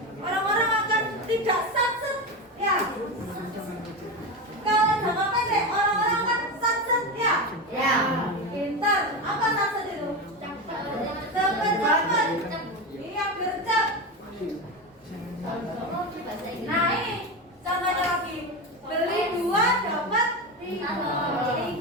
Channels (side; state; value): both; normal; correlation 0.19